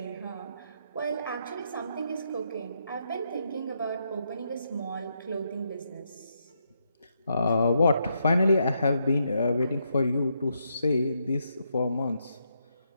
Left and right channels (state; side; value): inverted; both; correlation -0.79